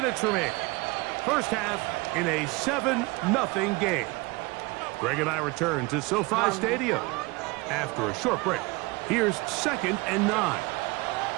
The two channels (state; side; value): quieter; left; 24.9 dB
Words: remaining. First half in a 7-0 game. Greg and I return to SoFi Stadium after a short break. Here's 2nd and 9.